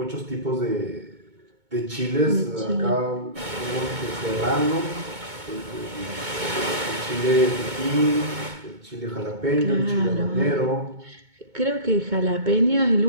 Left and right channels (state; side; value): late; left; 2.2 ms